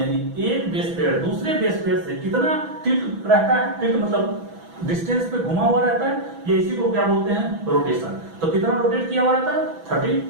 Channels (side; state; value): left; late; 6.1 ms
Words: एक बेस पेयर दूसरे बेस पेयर से कितना टिल्ट रहता है, टिल्ट मतलब डिस्टेंस पे घुमा हुआ रहता है, ये इसी को क्या बोलते हैं रोटेशन। तो कितना रोटेट किया हुआ रहता है